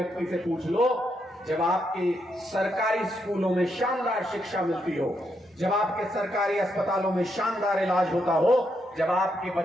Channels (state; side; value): normal; both; correlation 0.80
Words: से पूछ लो, जब आपके सरकारी स्कूलों में शानदार शिक्षा मिलती हो, जब आपके सरकारी अस्पतालों में शानदार इलाज होता हो, जब आपके